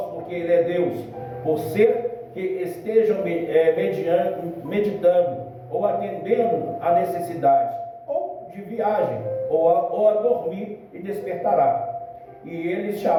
porque ele é Deus, por ser que estejam meditando, ou atendendo a necessidade, ou de viagem, ou a dormir, e despertará. E eles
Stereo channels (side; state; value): both; identical; correlation 1.00